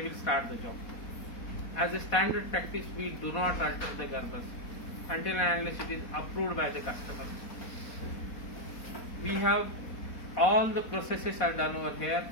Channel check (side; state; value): right; late; 4.1 ms